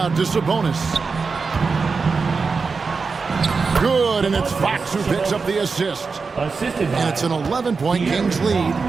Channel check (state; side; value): quieter; left; 4.7 dB